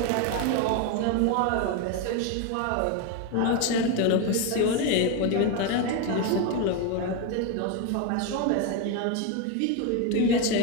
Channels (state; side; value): different; both; correlation 0.02